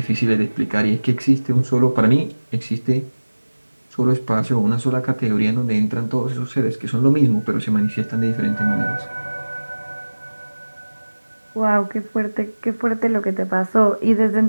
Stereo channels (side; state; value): both; inverted; correlation -1.00